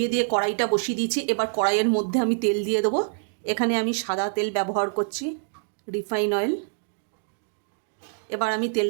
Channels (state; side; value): silent; left; digital silence